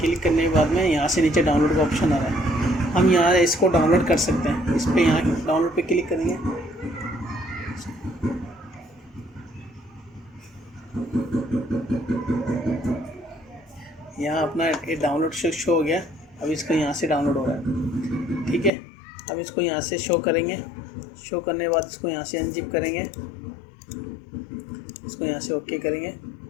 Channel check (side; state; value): right; drops out; at 18.7 s